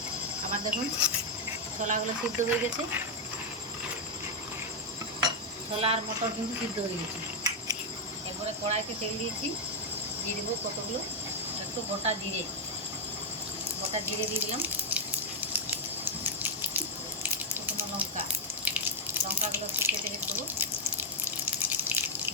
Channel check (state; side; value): normal; both; correlation -0.01